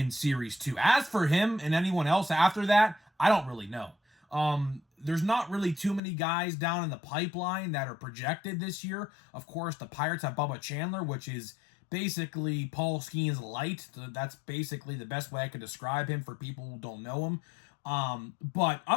Series 2. As for him and anyone else after that, I don't really know. There's not really too many guys down in the pipeline that are projected this year. Of course, the Pirates have Bubba Chandler, which is basically Paul Skeens light. That's basically the best way I could describe him for people who don't know him. But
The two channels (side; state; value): right; drops out; at 6.0 s